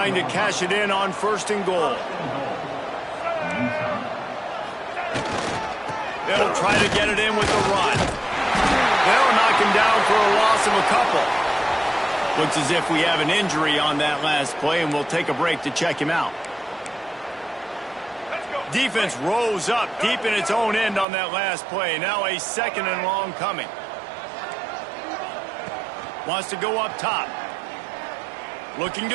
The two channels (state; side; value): drops out; left; at 21.1 s